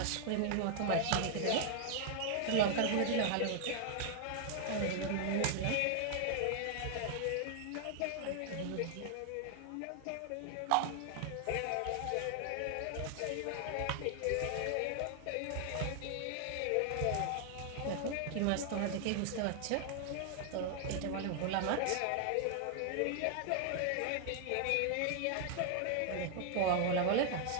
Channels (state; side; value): different; both; correlation 0.00